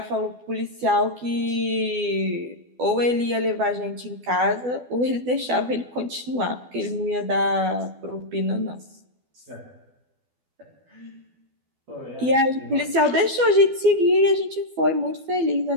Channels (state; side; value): late; left; 12 ms